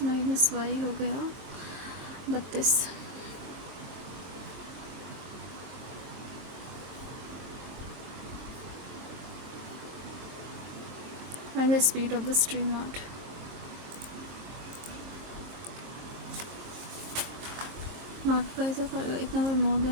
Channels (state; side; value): late; left; 22 ms